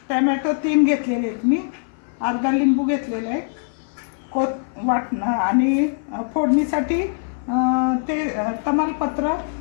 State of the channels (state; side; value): silent; right; 58 dB below the other